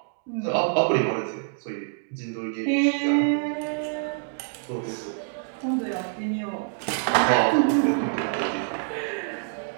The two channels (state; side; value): silent; left; digital silence